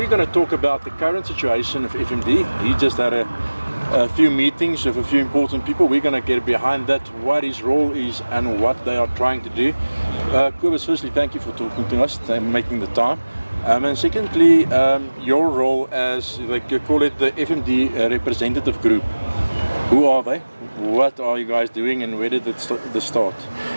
going to talk about the current situation of FMD. He just had a few meetings with a few important people. We're going to get behind that, what his role is and what they are trying to do. Kobus, firstly, thank you for talking to us and making the time. And secondly, your role as, like you call it, the FMD Representative Group. Who are they? What are you guys doing and where did it start?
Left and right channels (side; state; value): both; inverted; correlation -1.00